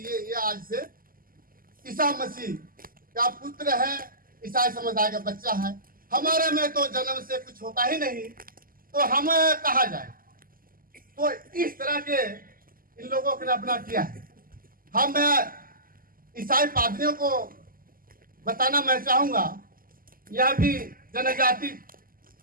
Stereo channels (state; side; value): late; left; 0.42 ms